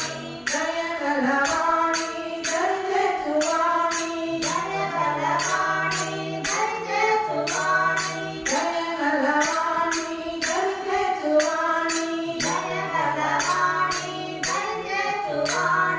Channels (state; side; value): identical; both; correlation 1.00